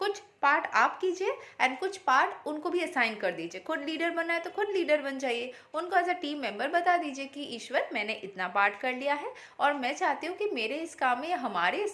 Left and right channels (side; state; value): both; identical; correlation 1.00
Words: पार्ट आप कीजिए एंड कुछ पार्ट उनको भी असाइन कर दीजिए। खुद लीडर बनना है तो खुद लीडर बन जाइए, उनको एज अ टीम मेंबर बता दीजिए कि ईश्वर, मैंने इतना पार्ट कर लिया है और मैं चाहती हूँ कि मेरे इस काम में या हमारे